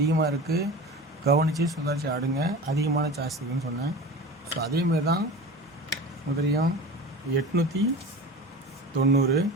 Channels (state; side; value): normal; both; correlation 0.33